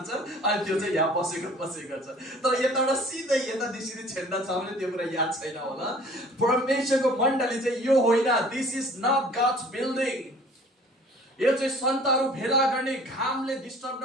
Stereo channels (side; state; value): both; normal; correlation 0.50